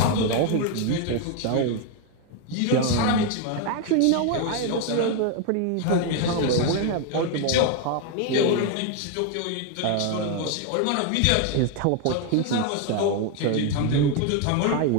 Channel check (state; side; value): different; both; correlation 0.01